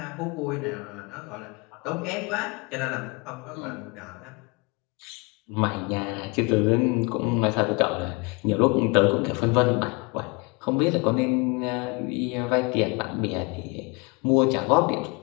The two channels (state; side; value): quieter; right; 28.0 dB